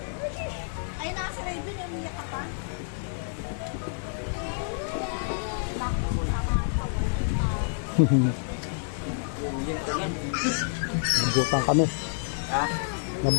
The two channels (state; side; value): silent; right; digital silence